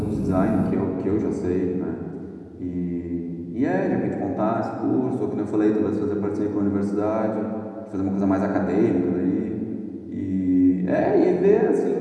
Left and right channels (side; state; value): both; identical; correlation 1.00